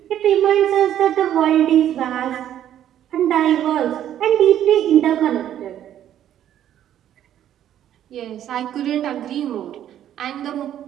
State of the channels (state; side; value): quieter; left; 11.1 dB